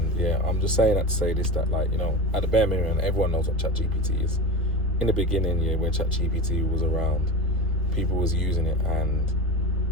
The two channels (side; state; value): both; normal; correlation 0.28